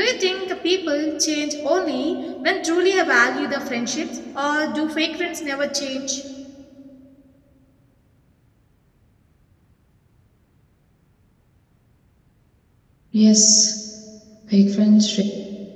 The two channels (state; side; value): identical; both; correlation 1.00